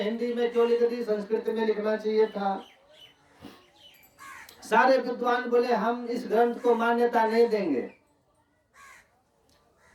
हिंदी में क्यों लिख दी, संस्कृत में लिखना चाहिए था। सारे विद्वान बोले हम इस ग्रंथ को मान्यता नहीं देंगे।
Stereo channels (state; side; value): identical; both; correlation 1.00